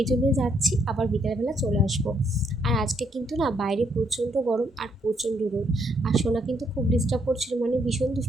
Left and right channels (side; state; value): both; normal; correlation 0.73